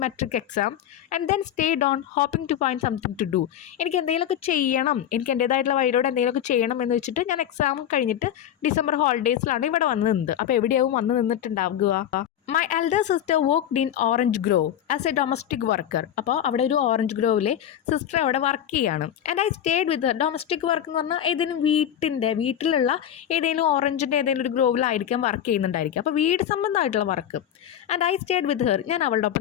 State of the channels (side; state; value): right; quieter; 10.4 dB